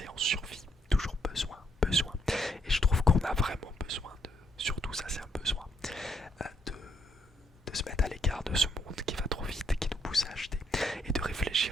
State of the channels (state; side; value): normal; both; correlation 0.74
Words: en survie. Toujours besoin, besoin. Et je trouve qu'on a vraiment besoin de, surtout ça c'est un besoin, de se mettre à l'écart de ce monde qui va trop vite, qui nous pousse à acheter. Et de